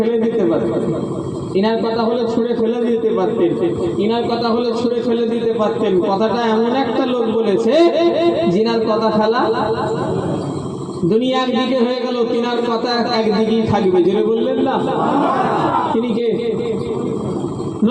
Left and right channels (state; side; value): identical; both; correlation 1.00